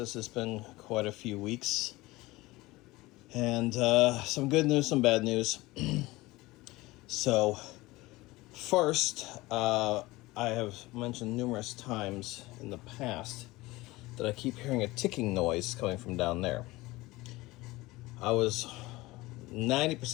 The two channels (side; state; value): right; quieter; 20.2 dB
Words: It's been quite a few weeks. And some good news, some bad news. So, first, I have mentioned numerous times in the past that I keep hearing a ticking noise coming from down there. I was